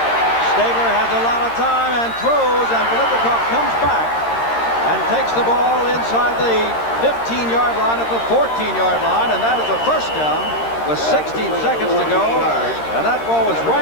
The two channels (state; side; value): late; right; 13 ms